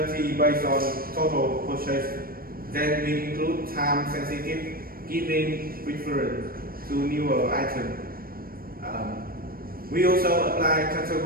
based on total purchase. Then we include time-sensitive, giving preference to newer items. We also apply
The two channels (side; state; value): left; late; 0.43 ms